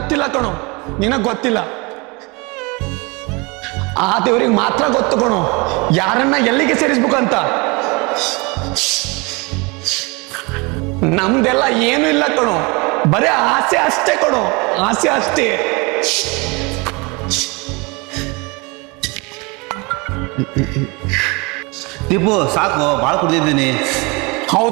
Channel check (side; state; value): left; quieter; 27.7 dB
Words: ಕಣೋ, ನಿನಗ್ ಗೊತ್ತಿಲ್ಲ. ಆ ದೇವ್ರಿಗೆ ಮಾತ್ರ ಗೊತ್ತು ಕಣೋ ಯಾರನ್ನ ಎಲ್ಲಿಗೆ ಸೇರಿಸ್ಬೇಕಂತ. ನಮ್ದೆಲ್ಲ ಏನು ಇಲ್ಲ ಕಣೋ, ಬರೇ ಆಸೆ ಅಷ್ಟೇ ಕಣೋ, ಆಸೆ ಅಷ್ಟೇ. ದೀಪು ಸಾಕು, ಭಾಳ ಕುಡ್ದಿದ್ದೀನಿ.